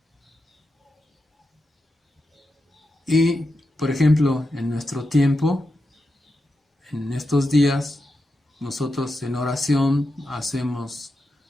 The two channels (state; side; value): normal; both; correlation 0.88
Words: Y, por ejemplo, en nuestro tiempo, en estos días, nosotros en oración hacemos